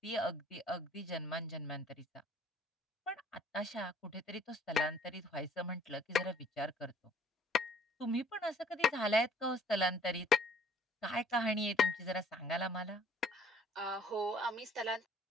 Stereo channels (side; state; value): both; normal; correlation 0.57